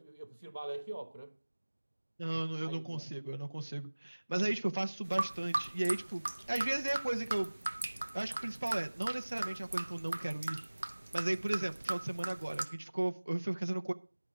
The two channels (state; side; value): inverted; both; correlation -1.00